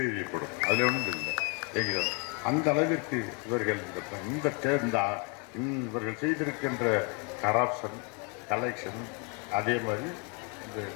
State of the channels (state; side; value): quieter; right; 33.9 dB